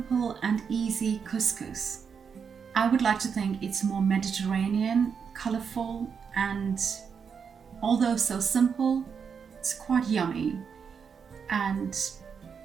and easy couscous. I would like to think it's more Mediterranean, colourful, and although so simple, it's quite yummy and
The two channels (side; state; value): left; quieter; 6.5 dB